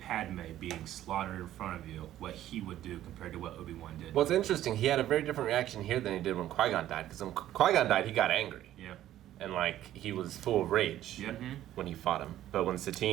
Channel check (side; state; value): left; quieter; 12.8 dB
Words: being slaughtered in front of you, what he would do compared to what Obi-Wan did. Well, it's interesting. He had a very different reaction here than he did when Qui-Gon died. Because when Qui-Gon died, he got angry. Yeah. And, like, he was full of rage Yeah. when he fought him. But when